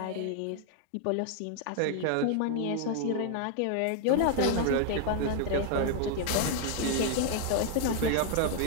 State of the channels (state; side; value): different; both; correlation 0.00